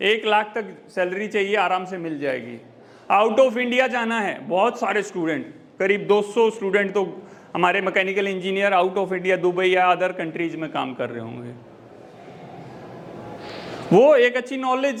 1 लाख तक सैलरी चाहिए, आराम से मिल जाएगी। आउट ऑफ इंडिया जाना है, बहुत सारे स्टूडेंट, करीब 200 स्टूडेंट तो हमारे mechanical engineer out of India Dubai या अदर कंट्रीज में काम कर रहे होंगे। वो एक अच्छी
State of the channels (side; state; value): both; identical; correlation 1.00